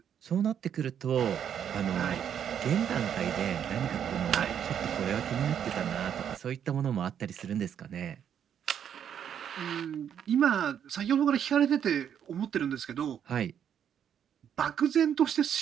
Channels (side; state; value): left; quieter; 8.8 dB